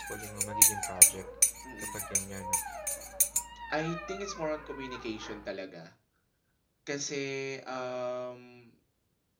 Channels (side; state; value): both; identical; correlation 1.00